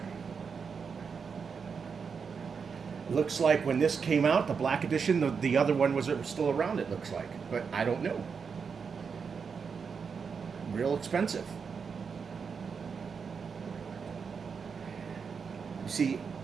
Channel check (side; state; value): left; quieter; 5.9 dB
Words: Looks like when this came out, the black edition, the other one was still around, it looks like. But I don't know. Real expensive. You see,